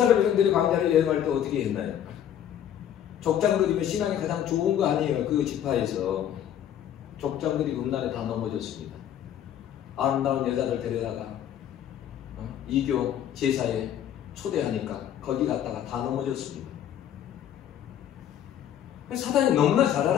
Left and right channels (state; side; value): quieter; right; 10.3 dB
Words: 백성들이 광야를 여행할 때 어떻게 했나요? 족장들이면 신앙이 가장 좋은 거 아니에요. 그 지파에서 족장들이 음란에 다 넘어졌습니다. 아름다운 여자들 데려다가 이교 제사에 초대하니까 거기 갔다가 다 넘어졌습니다. 사단이 너무나 잘